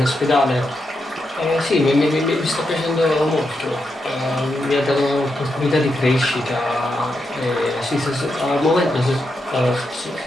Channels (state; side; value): normal; both; correlation 0.84